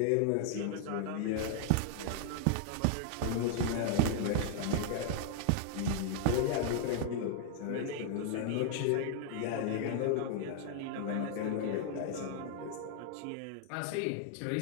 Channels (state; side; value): different; both; correlation 0.00